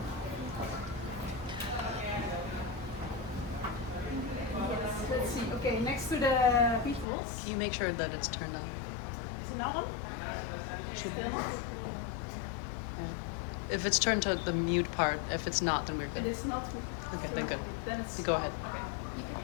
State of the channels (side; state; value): right; drops out; at 7.1 s